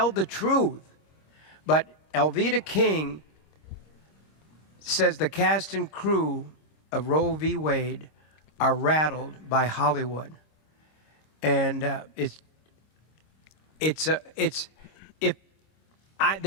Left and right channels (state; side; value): late; right; 26 ms